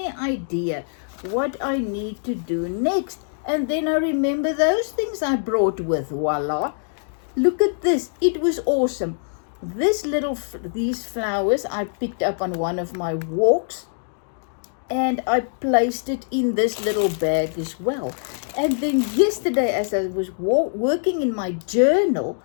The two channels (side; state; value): right; silent; digital silence